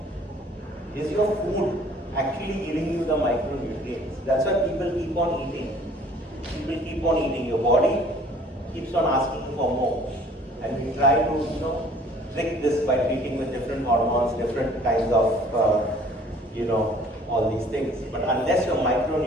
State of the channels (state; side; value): normal; both; correlation 0.53